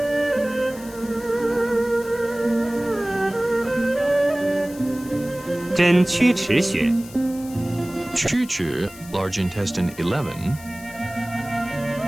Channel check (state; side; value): noise; left; hiss, 18 dB below the sound